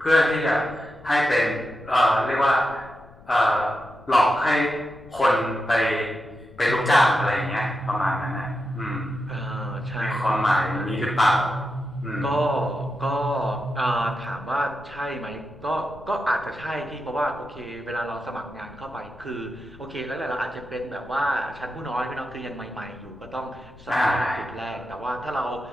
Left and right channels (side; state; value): left; noise; rumble, 22 dB below the sound